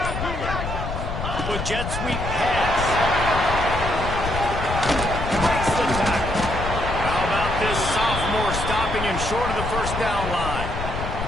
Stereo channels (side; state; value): left; noise; rumble, 5 dB below the sound